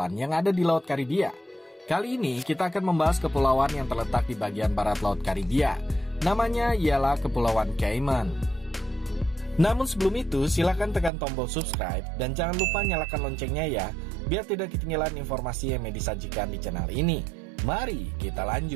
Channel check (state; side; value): drops out; left; at 11.1 s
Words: yang ada di Laut Karibia. Kali ini kita akan membahas kepulauan yang terletak di bagian barat Laut Karibia. Namanya ialah Kepulauan Cayman. Namun sebelum itu, silakan tekan tombol subscribe dan jangan lupa nyalakan loncengnya ya, biar tidak ketinggalan informasi yang Medi sajikan di channel ini. Mari kita